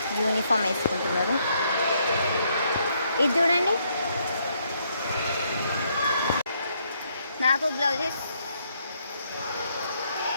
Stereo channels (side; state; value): both; inverted; correlation -0.73